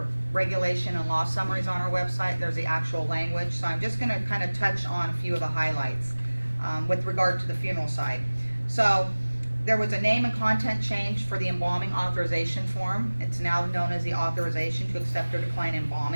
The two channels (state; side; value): inverted; both; correlation -1.00